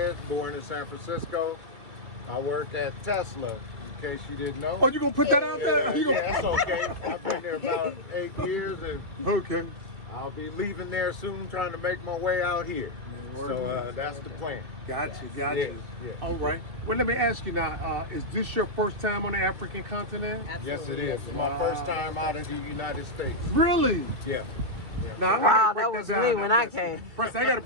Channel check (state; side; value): late; left; 2.3 ms